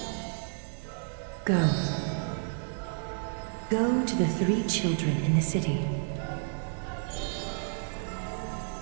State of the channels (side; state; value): left; silent; 57 dB below the other